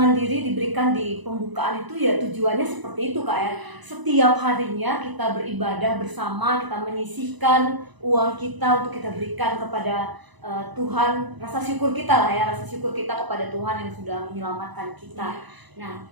diri diberikan di pembukaan itu ya tujuannya seperti itu Kak ya. Setiap harinya kita beribadah bersama, kita menyisihkan uang kita untuk kita berikan kepada Tuhan, rasa syukur kita lah ya, rasa syukur kita kepada Tuhan yang sudah menyelamatkan kita. Nah,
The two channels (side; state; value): left; late; 1.0 ms